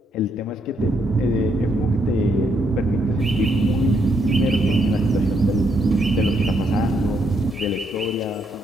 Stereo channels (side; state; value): both; normal; correlation 0.75